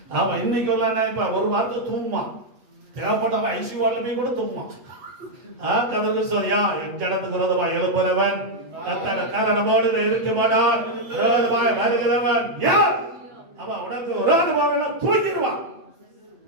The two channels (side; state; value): left; late; 8.2 ms